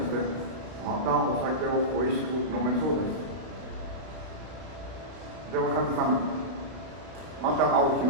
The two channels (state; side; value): late; left; 32 ms